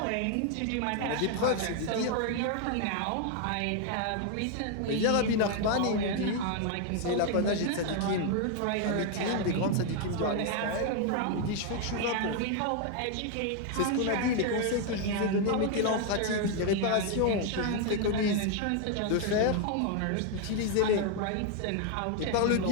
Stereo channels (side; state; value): both; different; correlation 0.00